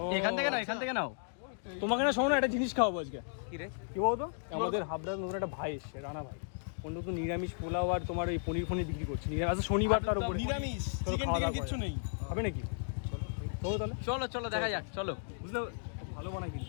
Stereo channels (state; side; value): silent; right; digital silence